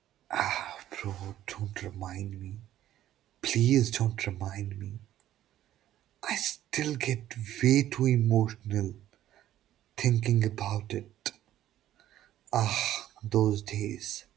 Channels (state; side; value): quieter; left; 12.7 dB